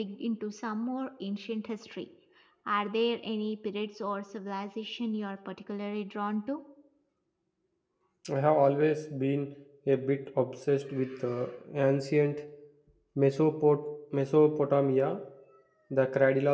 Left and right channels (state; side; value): identical; both; correlation 1.00